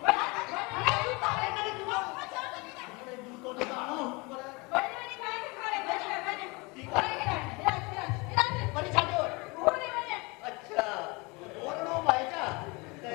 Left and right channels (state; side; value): quieter; right; 26.8 dB